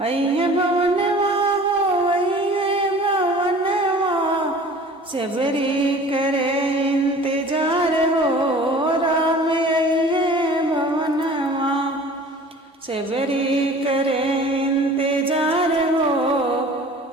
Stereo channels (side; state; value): both; normal; correlation 0.45